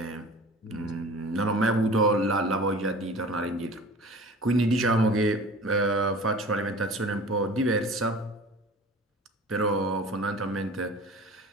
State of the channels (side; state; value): both; normal; correlation 0.41